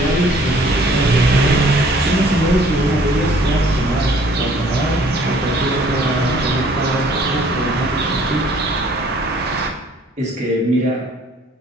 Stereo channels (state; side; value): normal; both; correlation 0.57